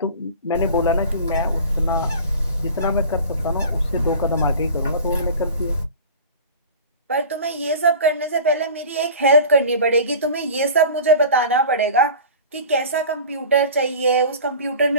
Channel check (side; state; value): both; inverted; correlation -0.38